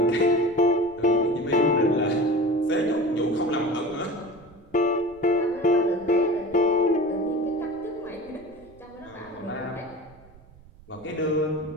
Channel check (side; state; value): right; noise; rumble, 25 dB below the sound